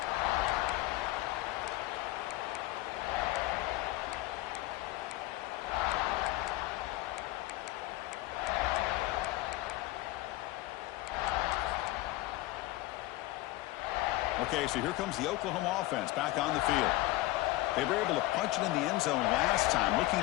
Okay, so here comes the Oklahoma offense back on the field. They were able to punch it in the end zone last time. Looking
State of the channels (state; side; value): quieter; right; 18.3 dB